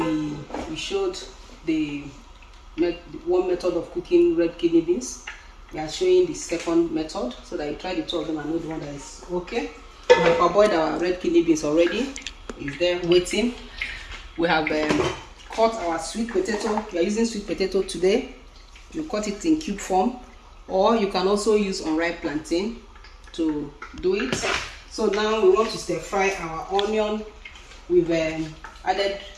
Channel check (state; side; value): identical; both; correlation 1.00